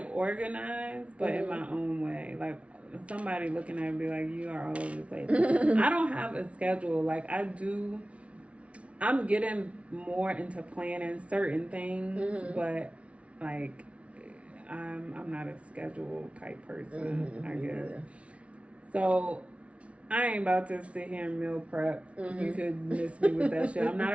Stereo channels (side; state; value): left; late; 0.063 ms